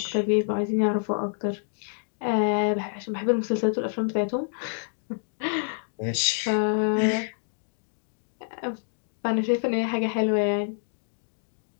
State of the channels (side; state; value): right; silent; digital silence